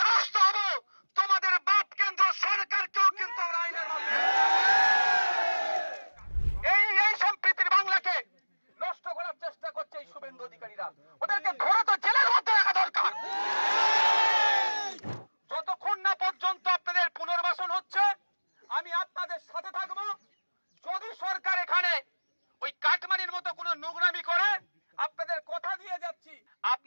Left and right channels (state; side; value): inverted; both; correlation -1.00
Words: দ্বারস্থ হব, তোমাদের বাপ কেন্দ্র সরকারকেও কিন্তু আমরা আইনের এই সম্প্রীতির বাংলাকে নষ্ট করার চেষ্টা করছে এই শুভেন্দু অধিকারীরা। ওদেরকে ধরে তো জেলের মধ্যে রাখা দরকার। যতক্ষণ না পর্যন্ত আপনাদের পুনর্বাসন হচ্ছে আমি আপনাদের সাথে থাকব। যদি সরকার এখানে ওই কাটমানির মতো কোনো নোংরামি করে, আপনাদের কথা দিয়ে যাচ্ছি,